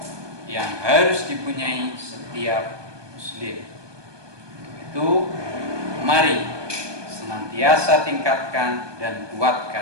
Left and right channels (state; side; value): late; left; 1.2 ms